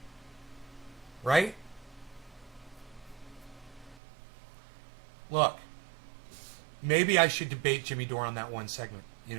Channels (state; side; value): drops out; left; at 4.0 s